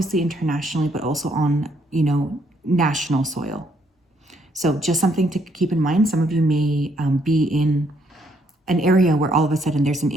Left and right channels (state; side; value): normal; both; correlation 0.70